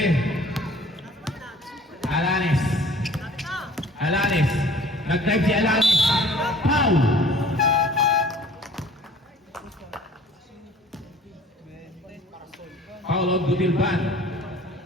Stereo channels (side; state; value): both; normal; correlation 0.51